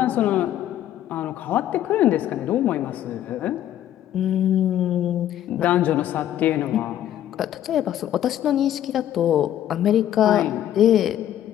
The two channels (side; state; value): right; quieter; 11.7 dB